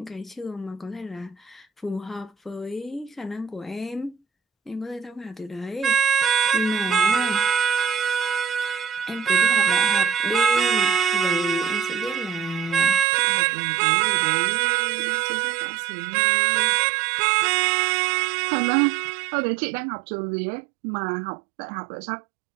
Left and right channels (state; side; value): drops out; left; at 13.1 s